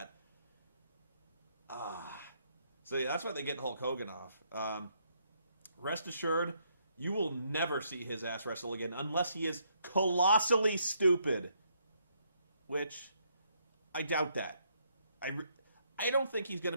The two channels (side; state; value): both; inverted; correlation -0.73